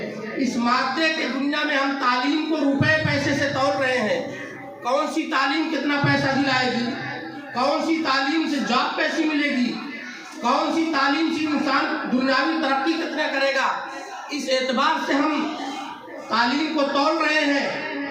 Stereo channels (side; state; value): both; identical; correlation 1.00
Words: اس مادے کی دنیا میں ہم تعلیم کو روپے پیسے سے تول رہے ہیں۔ کون سی تعلیم کتنا پیسہ دلائے گی؟ کون سی تعلیم سے جاب کیسی ملے گی؟ کون سی تعلیم سے انسان دنیاوی ترقی کتنا کرے گا؟ اس اعتبار سے ہم تعلیم کو تول رہے ہیں۔